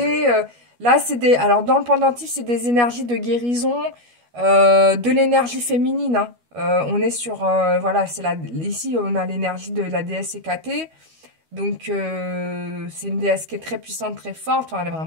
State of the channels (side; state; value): left; late; 12 ms